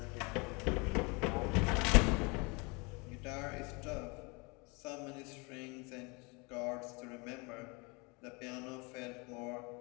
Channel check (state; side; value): quieter; right; 29.1 dB